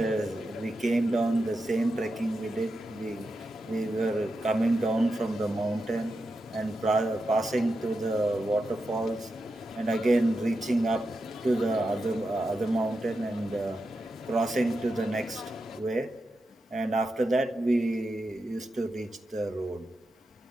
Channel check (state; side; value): normal; both; correlation 0.88